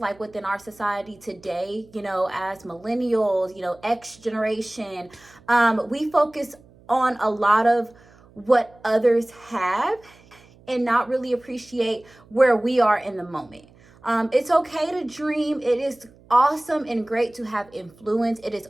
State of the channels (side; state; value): right; noise; hum, 27 dB below the sound